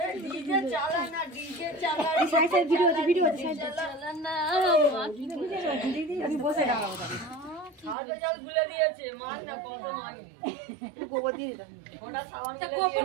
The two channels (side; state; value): left; drops out; at 8.0 s